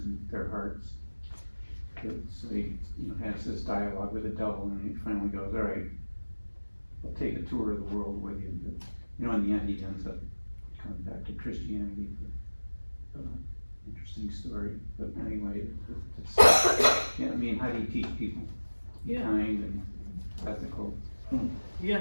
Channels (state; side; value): inverted; both; correlation -1.00